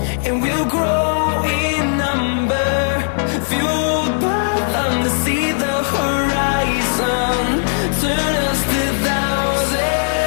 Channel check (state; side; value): silent; right; digital silence